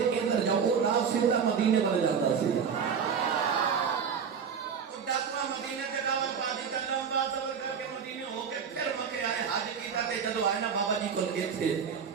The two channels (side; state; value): left; quieter; 6.7 dB